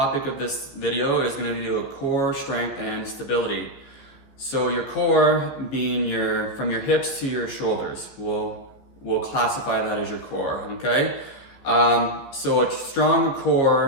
of this video is going to be core strength and stability. So your core being from your hips to your shoulders. We'll classify that as your core, okay? So a strong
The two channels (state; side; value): late; right; 15 ms